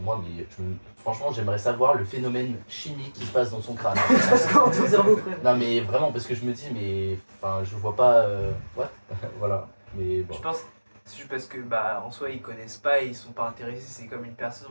moi, mais franchement, j'aimerais savoir le phénomène chimique qui se passe dans son crâne. Parce que dans ton cerveau, frère. Non, mais vraiment, parce que je me dis, mais enfin, je vois pas. What. Voilà, mais bon. Je pense, c'est juste parce que bah en soi ils connaissent pas et ils sont pas intéressés. C'est comme une personne,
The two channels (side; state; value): both; inverted; correlation -1.00